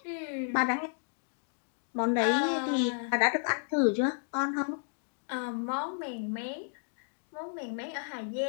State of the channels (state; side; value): silent; right; digital silence